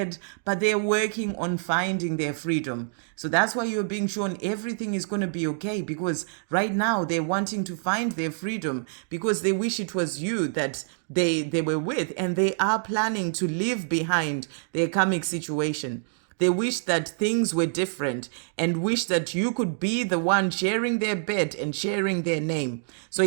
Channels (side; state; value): left; silent; digital silence